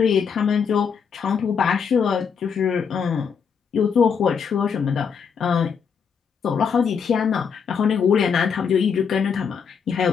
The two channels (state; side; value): quieter; right; 6.5 dB